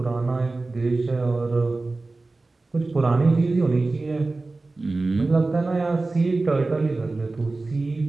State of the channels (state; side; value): quieter; left; 3.3 dB